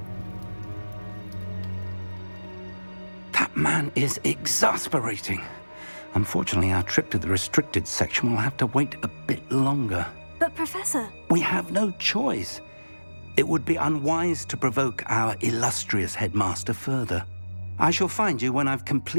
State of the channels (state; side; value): inverted; both; correlation -1.00